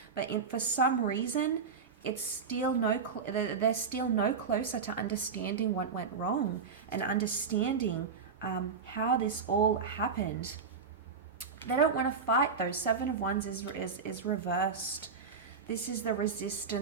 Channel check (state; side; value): quieter; left; 5.5 dB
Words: but for some reason, it's still they're still no closer to understanding what went wrong and understanding how this all happened. They don't want to fight though. Seven of Wands is reversed. This is the